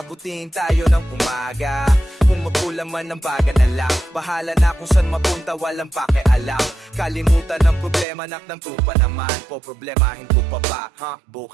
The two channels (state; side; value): drops out; left; at 8.1 s